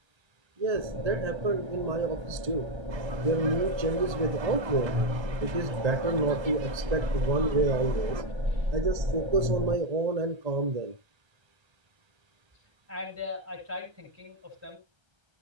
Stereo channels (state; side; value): late; left; 1.3 ms